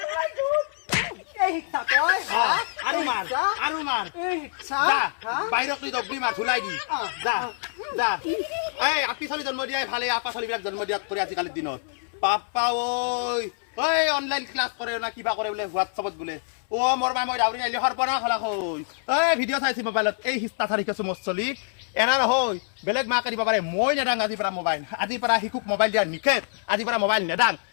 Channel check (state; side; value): silent; right; 61 dB below the other